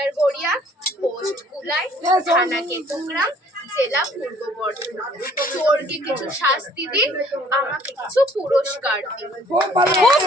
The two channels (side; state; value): both; normal; correlation 0.58